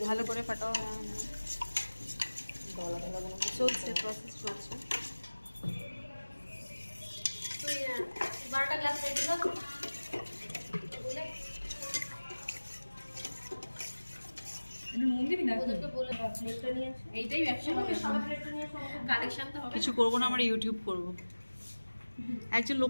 ভালো করে ফাটাও। গলা গলা চলছে, প্রসেস চলছে। তুই 12টা গ্লাস রেডি কর বলে মন্দিরই না ওদেরকে বলে প্লেটটা নিয়ে আসো। এইটাই ব্যবসা হবে, সবাই প্লেটটা নিয়ে আসো, কালেকশন তো হবে। কিছু করবো না, আমরা ইউটিউব করব। একজন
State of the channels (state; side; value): inverted; both; correlation -1.00